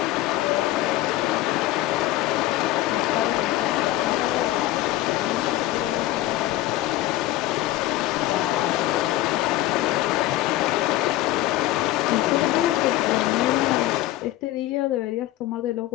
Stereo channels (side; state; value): right; quieter; 15.6 dB